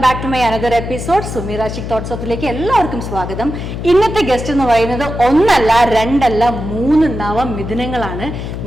back to my another episode Sumeera chic thoughts ഓഫിലേക്ക് എല്ലാവർക്കും സ്വാഗതം. ഇന്നത്തെ ഗസ്റ്റ് എന്ന് പറയുന്നത് ഒന്നല്ല രണ്ടല്ല 3 നവമിഥുനങ്ങളാണ്.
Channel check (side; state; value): left; noise; hum, 6 dB below the sound